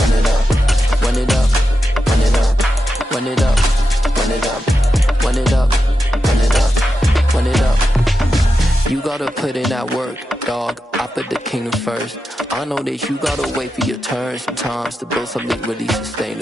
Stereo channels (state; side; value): normal; both; correlation 0.89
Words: it up, run it up, run it up, run it up, run it up, run it up, run it up, run it up. You gotta put in that work, dog. I put the kingdom first. I know that you gotta wait for your turn sometimes to build something really